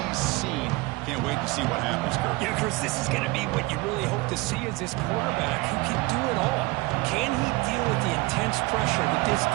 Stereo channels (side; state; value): left; quieter; 23.1 dB